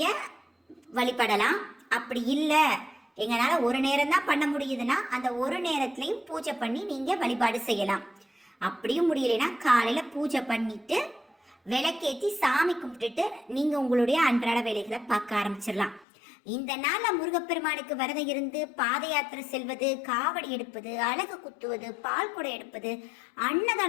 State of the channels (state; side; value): drops out; right; at 16.1 s